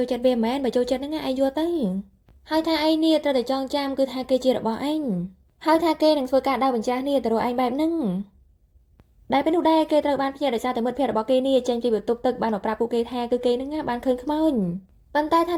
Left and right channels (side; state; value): both; identical; correlation 1.00